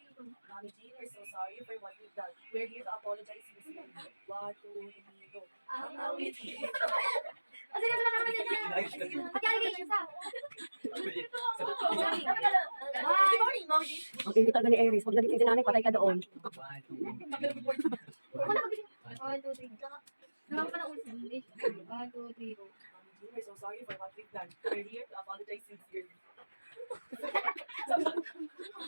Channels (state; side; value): inverted; both; correlation -1.00